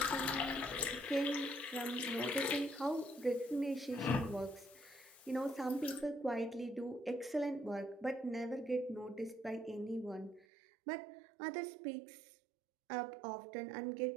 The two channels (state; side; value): drops out; left; at 10.5 s